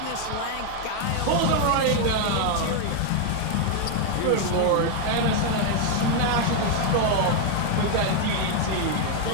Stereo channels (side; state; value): both; different; correlation 0.00